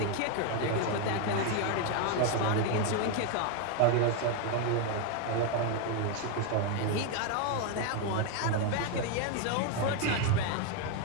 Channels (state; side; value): different; both; correlation 0.01